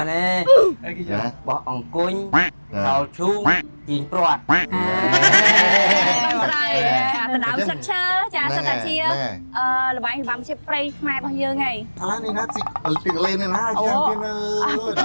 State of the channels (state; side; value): inverted; both; correlation -1.00